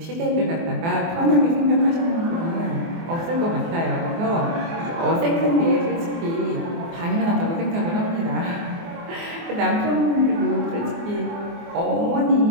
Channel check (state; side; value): late; left; 24 ms